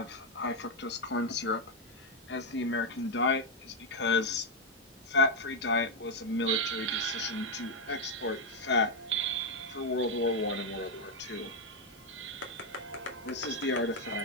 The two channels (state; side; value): normal; both; correlation 0.01